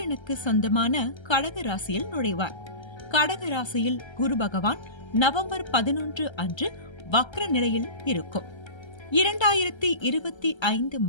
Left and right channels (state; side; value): late; right; 1.3 ms